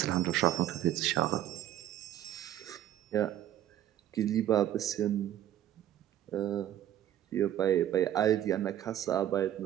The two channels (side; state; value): left; quieter; 12.0 dB